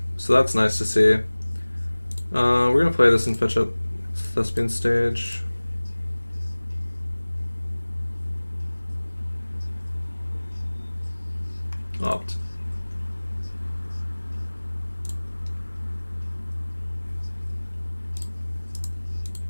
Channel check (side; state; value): both; inverted; correlation -1.00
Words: so that's nice to see. We're gonna play this and fetch up Thespian Stage. Opt.